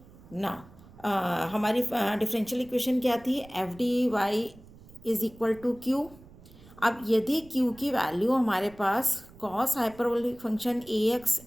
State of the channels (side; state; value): right; noise; rumble, 22 dB below the sound